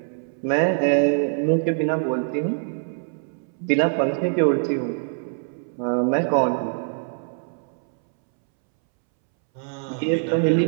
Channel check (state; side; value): silent; left; 63 dB below the other